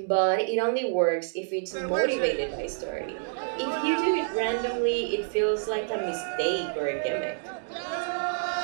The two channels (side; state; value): left; silent; digital silence